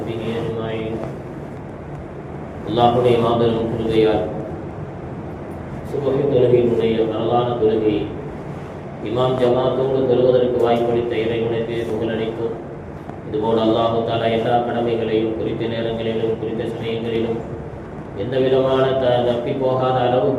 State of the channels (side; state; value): both; identical; correlation 1.00